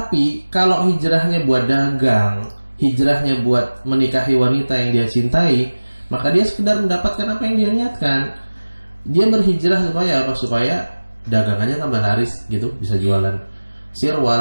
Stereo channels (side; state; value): both; inverted; correlation -1.00